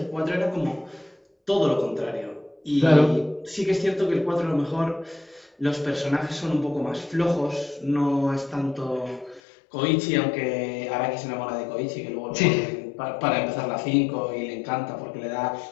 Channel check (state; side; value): drops out; right; at 9.4 s